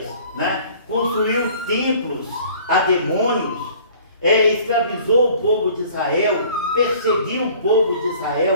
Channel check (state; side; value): inverted; both; correlation -0.51